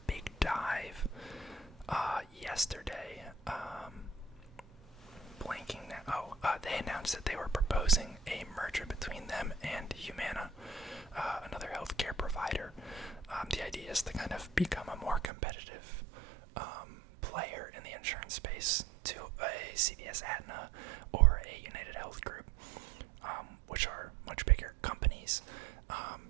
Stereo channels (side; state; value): left; drops out; at 15.3 s